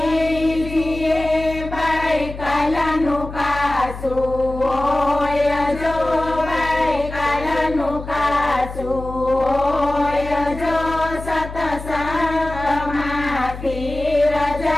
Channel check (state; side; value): noise; left; hum, 11 dB below the sound